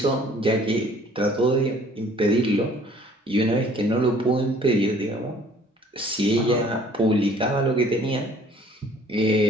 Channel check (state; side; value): normal; both; correlation 0.55